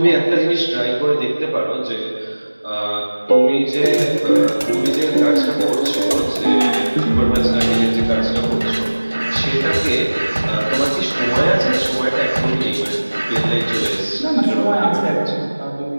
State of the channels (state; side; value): inverted; both; correlation -1.00